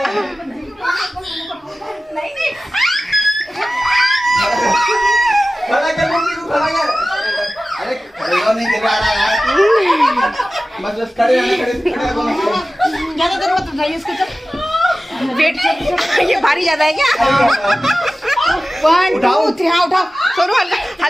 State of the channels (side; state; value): both; normal; correlation 0.96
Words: खड़ा कर मम्मी को, खड़ा कर। अरे खड़ा नहीं कर रहा यार, बस खड़े ज़्यादा देर मत उठाइए इसको, वेट ये भारी ज़्यादा है क्या? 1 2 3 हाँ उठाओ। सोनू